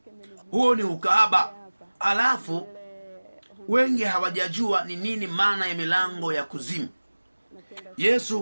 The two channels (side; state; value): both; inverted; correlation -1.00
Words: Huo ni ukahaba. Alafu wengi hawajajua ni nini maana ya milango ya kuzimu.